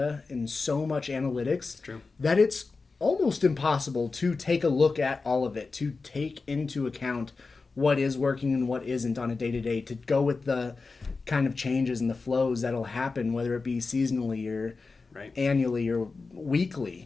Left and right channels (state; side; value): quieter; right; 4.1 dB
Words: and so much analytics that it's almost impossible to take a look at all of it, to take into account what is working and what isn't on a day-to-day, to go with the kind of changes and the flows that'll happen, whether it be seasonally or annually or